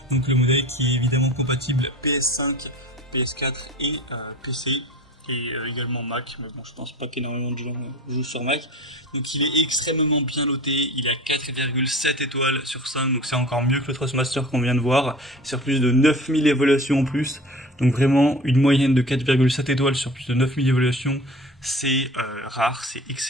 Donc le modèle qui est évidemment compatible PS5, PS4 et PC. Et également Mac, mais bon, je pense pas qu'énormément de gens jouent sur Mac. Donc il est extrêmement bien noté, il a 4,7 étoiles sur 5, donc c'est encore mieux que le Thrustmaster qu'on vient de voir, sur plus de 9000 évaluations en plus. Donc vraiment une moyenne de 4,7 étoiles sur plus de 9000 évaluations, c'est rare, c'est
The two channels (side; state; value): both; normal; correlation 0.40